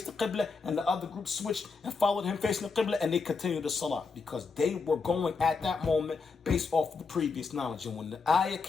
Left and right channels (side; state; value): right; quieter; 4.6 dB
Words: the Qibla, and the other group switched and followed him facing the Qibla, and they continued the Salah because they were going at that moment based off the previous knowledge. And when the ayah